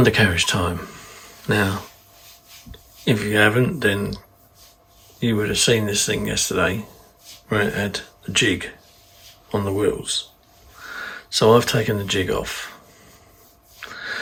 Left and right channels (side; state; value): both; identical; correlation 1.00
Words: time. Now, if you haven't, then you would have seen this thing yesterday where it had a jig on the wheels. So I've taken the jig off